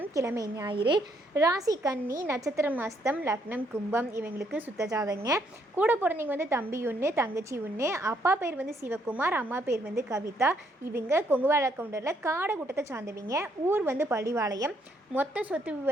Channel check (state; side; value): normal; both; correlation 0.71